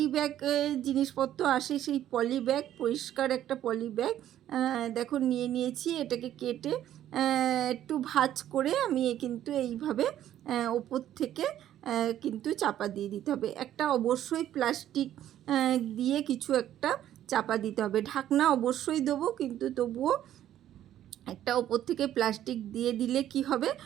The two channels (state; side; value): quieter; left; 11.8 dB